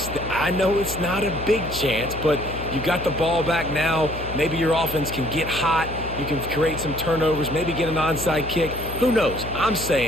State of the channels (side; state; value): left; noise; hum, 10 dB below the sound